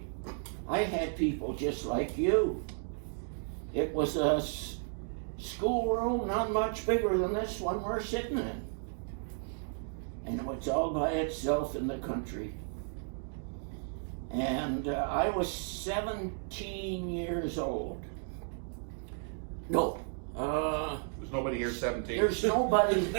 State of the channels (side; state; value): left; silent; 55 dB below the other